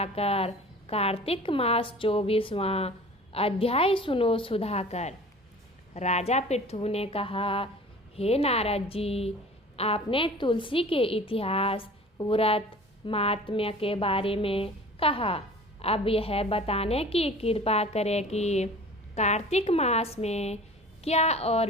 कार्तिक मास 24वां अध्याय सुनो सुधाकर। राजा पृथु ने कहा, हे नारद जी, आपने तुलसी के इतिहास व्रत महात्म्य के बारे में कहा। अब यह बताने की कृपा करें कि कार्तिक मास में क्या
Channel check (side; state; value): both; normal; correlation 0.43